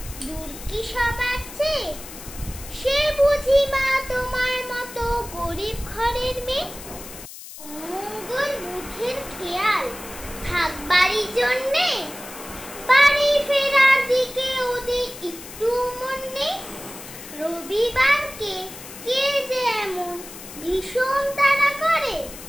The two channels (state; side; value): noise; left; hiss, 14 dB below the sound